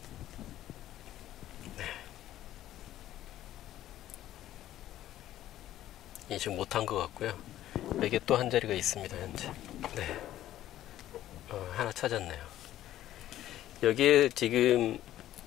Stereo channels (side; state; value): right; quieter; 13.2 dB